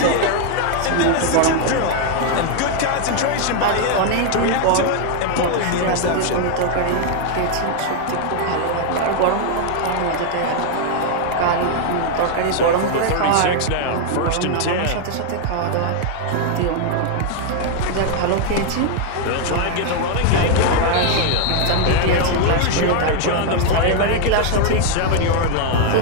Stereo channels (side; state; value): both; different; correlation 0.00